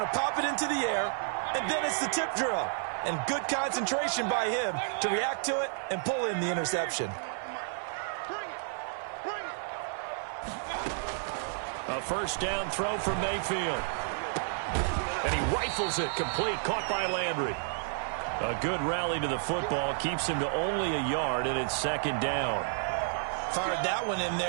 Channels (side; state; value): left; silent; 57 dB below the other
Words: to pop it into the air, and then it's the tip drill. And good concentration by him to react to it and pull in the interception. A first down throw from Mayfield. And he rifles it complete, caught by Landry. A good rally to the football, keeps him to only a yard, and it's second down. Fired that one in